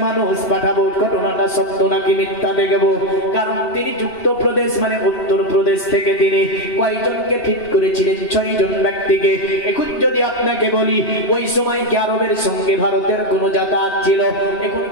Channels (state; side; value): late; right; 2.7 ms